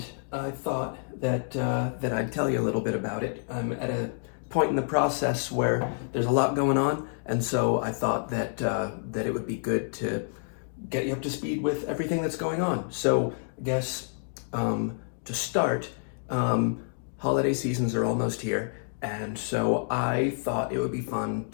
I thought that I'd tell you a little bit about it. I'm at a point in the process where there's a lot going on, and so I thought that it would be good to get you up to speed with everything that's going on. So I guess to start, um, holiday seasons are almost here, and so I thought it would be fun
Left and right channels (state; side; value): silent; right; digital silence